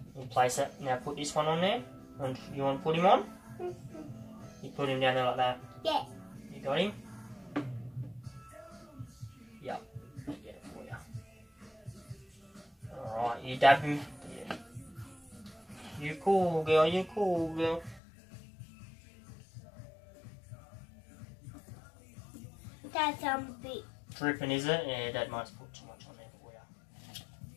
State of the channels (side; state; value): right; drops out; at 18.0 s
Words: You place it, now put this one on there. And you want to put him on? You put him down there like that. Yeah. You got him? Yep, I'll get it for you. Alright, you dab him. Yeah. You cool girl, you cool girl. That's bit. Dripping, is it? Yeah, Dad might put too much on there for